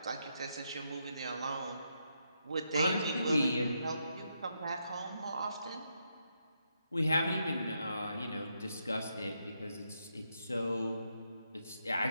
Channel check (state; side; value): inverted; both; correlation -0.81